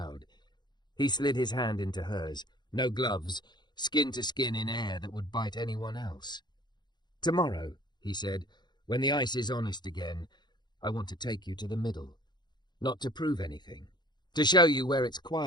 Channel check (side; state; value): right; late; 0.21 ms